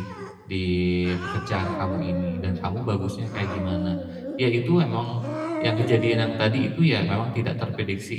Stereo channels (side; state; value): both; identical; correlation 1.00